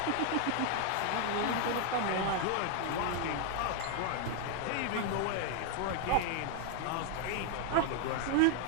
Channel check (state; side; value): different; both; correlation 0.00